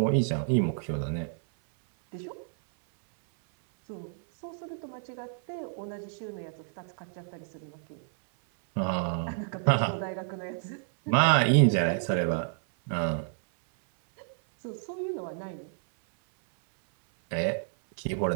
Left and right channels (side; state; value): left; silent; 58 dB below the other